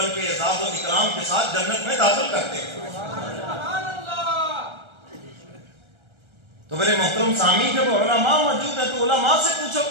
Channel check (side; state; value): left; late; 1.3 ms